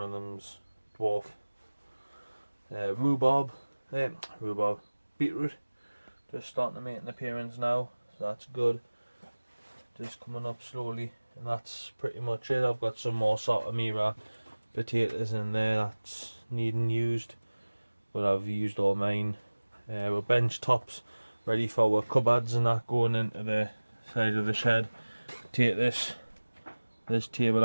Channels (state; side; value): inverted; both; correlation -1.00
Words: of them's dwarf. Beetroot, just starting to make an appearance now, so that's good. Just coming up slowly, and that's pretty much it. I've got some more Saltamira potatoes in there that's needing used, but I've used all mine. We're bench tops ready for our cupboards and that going into the side of the shed. Take this